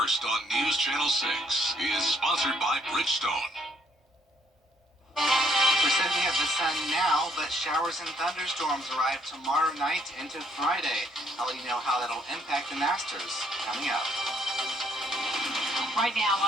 on News Channel 6 is sponsored by Bridgestone. We're said we have the sun now, but showers and thunderstorms arrive tomorrow night into Friday. I'll let you know how that'll impact the Masters coming up. Right now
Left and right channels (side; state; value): both; normal; correlation 0.68